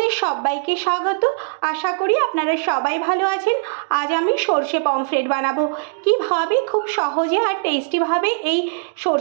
সবাইকে স্বাগত। আশা করি আপনারা সবাই ভালো আছেন। আজ আমি সর্ষে পমফ্রেট বানাবো। কিভাবে খুব সহজে আর টেস্টিভাবে এই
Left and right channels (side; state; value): left; silent; 66 dB below the other